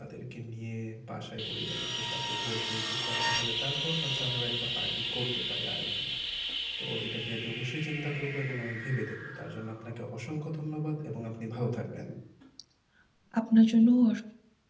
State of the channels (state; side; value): identical; both; correlation 1.00